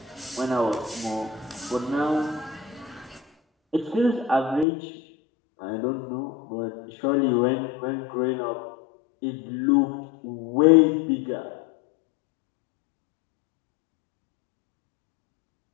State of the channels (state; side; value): drops out; right; at 4.7 s